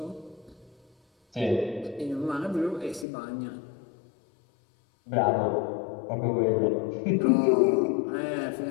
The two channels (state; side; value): drops out; right; at 3.1 s